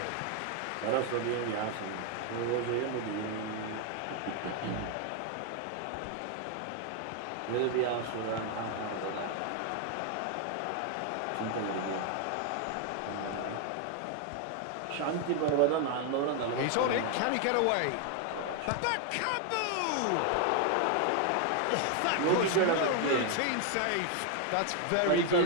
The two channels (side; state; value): both; different; correlation 0.00